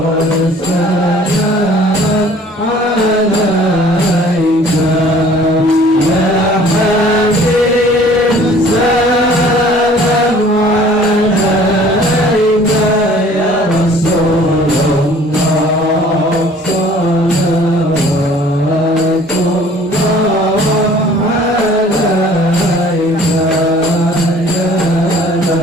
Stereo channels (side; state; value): both; normal; correlation 0.52